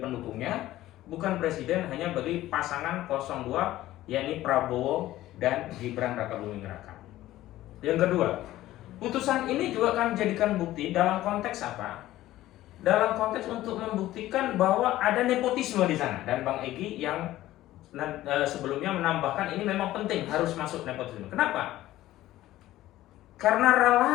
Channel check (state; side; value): quieter; right; 15.1 dB